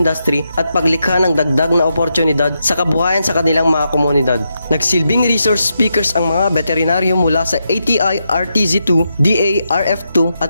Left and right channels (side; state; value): both; inverted; correlation -0.84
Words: at paglikha ng dagdag na oportunidad sa kabuhayan sa kanilang mga komunidad. Nagsilbing resource speakers ang mga veterinaryo mula sa ATI RTZ2, DARF2